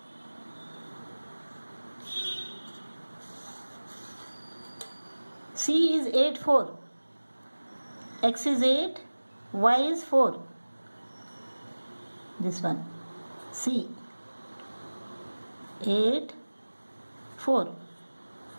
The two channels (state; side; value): inverted; both; correlation -1.00